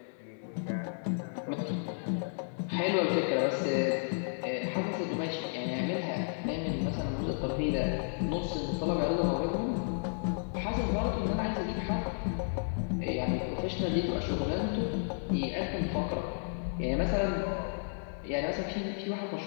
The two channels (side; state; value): right; silent; digital silence